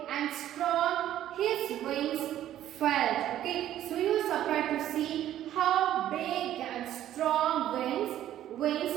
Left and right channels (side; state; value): left; quieter; 12.1 dB